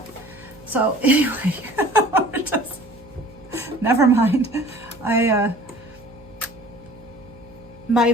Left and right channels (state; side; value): noise; right; hum, 24 dB below the sound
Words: So anyway, never mind.